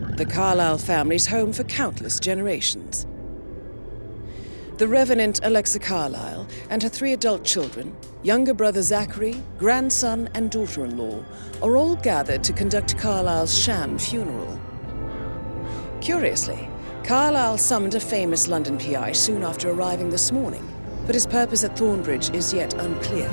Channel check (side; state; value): both; inverted; correlation -1.00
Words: The Carlyle family's home for countless generations. The Revenant Alexa Carlyle and her 3 adult children, younger brother Zachary, grandson, and daughter-in-law, are all gathered to conduct Carlyle's sham funeral. Curiously, Carlyle summoned a famous London PI soon after arriving this morning, but his purpose at Thornbridge is yet unclear.